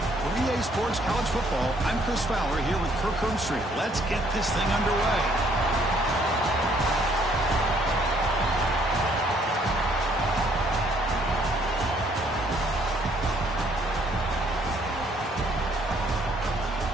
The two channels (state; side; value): normal; both; correlation 0.65